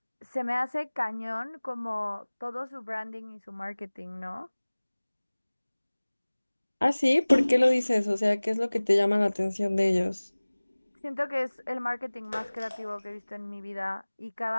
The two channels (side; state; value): both; inverted; correlation -1.00